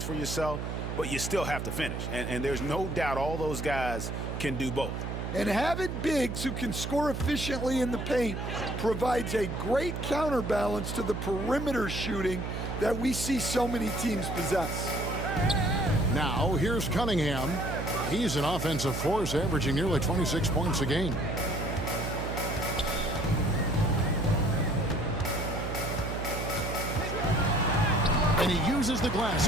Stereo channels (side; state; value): right; noise; hum, 4 dB below the sound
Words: for yourself, but you still have to finish. And there's no doubt all those guys can do both. And having bigs who can score efficiently in the paint provides a great counterbalance to the perimeter shooting that we see so many teams possess. Now, here's Cunningham. He's an offensive force, averaging nearly 26 points a game. And he uses the glass